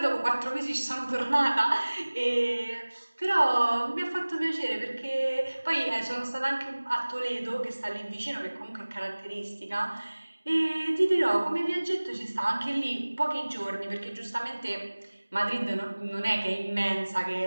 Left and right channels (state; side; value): inverted; both; correlation -1.00